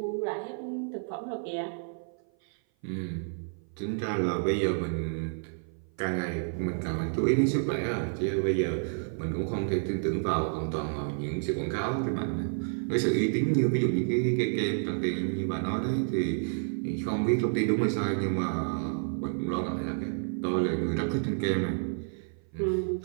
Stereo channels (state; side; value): silent; left; 55 dB below the other